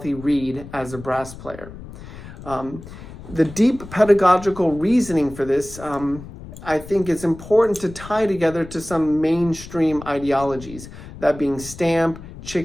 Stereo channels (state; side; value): noise; left; rumble, 15 dB below the sound